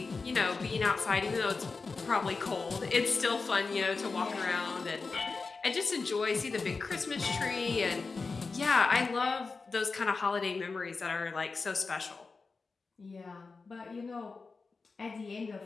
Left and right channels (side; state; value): right; quieter; 4.3 dB